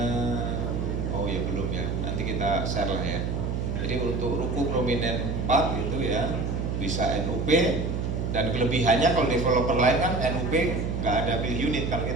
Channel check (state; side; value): noise; right; hum, 1 dB below the sound